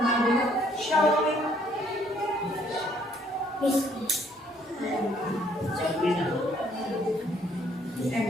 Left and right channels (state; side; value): normal; both; correlation 0.65